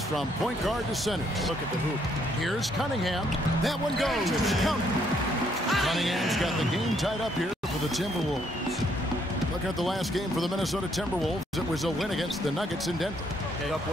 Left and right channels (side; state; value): both; normal; correlation 0.70